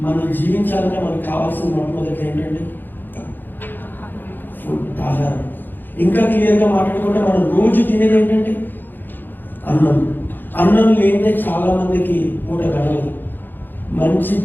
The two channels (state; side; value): late; right; 0.091 ms